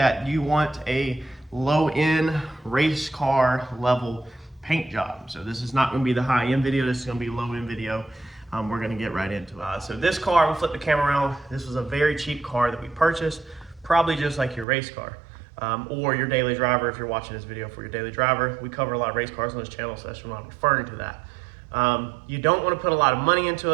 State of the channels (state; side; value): drops out; left; at 14.7 s